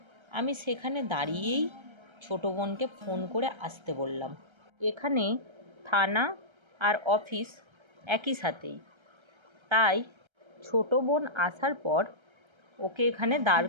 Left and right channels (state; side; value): late; left; 1.3 ms